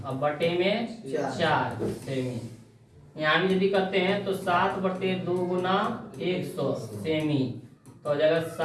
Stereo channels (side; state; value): both; identical; correlation 1.00